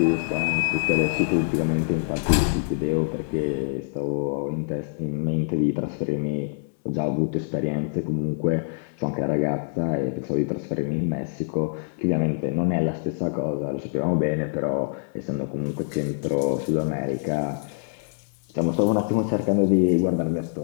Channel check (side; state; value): right; silent; digital silence